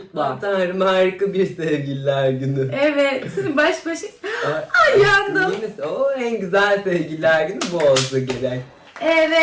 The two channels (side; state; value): both; identical; correlation 1.00